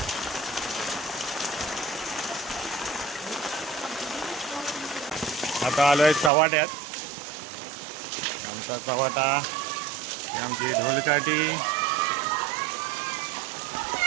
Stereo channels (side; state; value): left; drops out; at 6.3 s